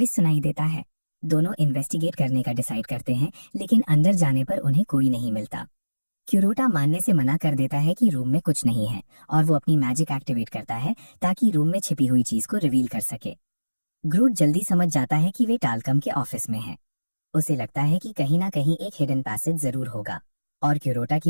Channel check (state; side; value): inverted; both; correlation -1.00